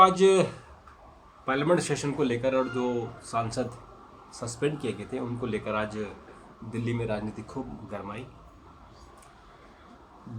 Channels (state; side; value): identical; both; correlation 1.00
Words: आज पार्लियामेंट सेशन को लेकर और जो सांसद सस्पेंड किए गए थे उनको लेकर आज दिल्ली में राजनीति खूब गरमाई।